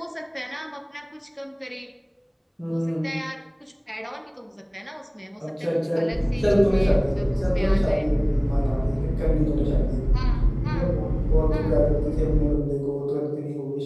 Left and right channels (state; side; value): identical; both; correlation 1.00